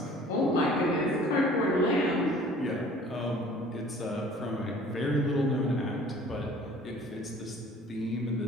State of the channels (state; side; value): normal; both; correlation 0.50